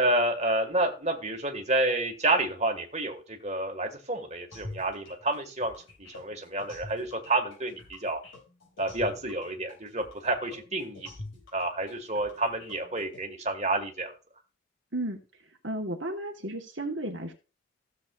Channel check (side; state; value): both; normal; correlation -0.04